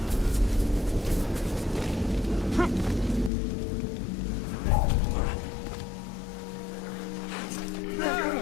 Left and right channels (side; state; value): right; drops out; at 3.3 s